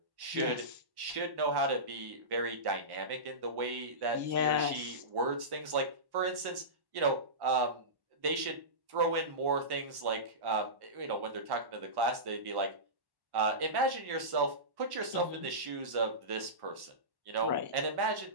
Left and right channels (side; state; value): left; late; 1.1 ms